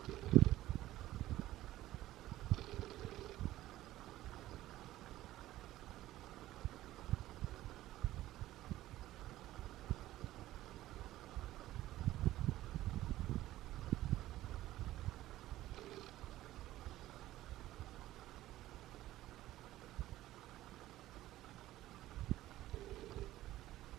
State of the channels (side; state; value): left; quieter; 15.2 dB